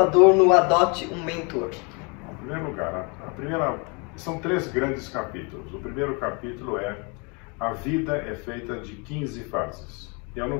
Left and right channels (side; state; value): right; quieter; 32.3 dB